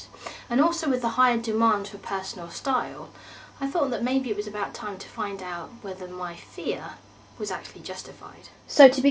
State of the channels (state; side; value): identical; both; correlation 1.00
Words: and also with the higher demand for personal style, I thought that maybe it was about time to find out whether my fear was actually justified. So to